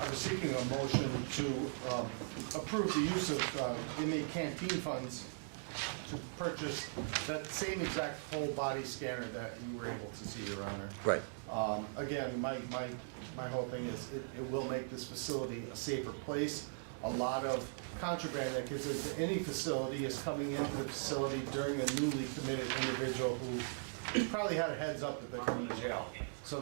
was seeking a motion to approve the use of inmate canteen funds to purchase that same exact whole body scanner that you were able to see, Your Honor. Right. Again, my whole thing is it will make this facility a safer place. A lot of contraband that gets into any facility is coming into the facility during a newly committed individual who probably had a heads up that they're coming to jail. So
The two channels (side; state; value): left; silent; digital silence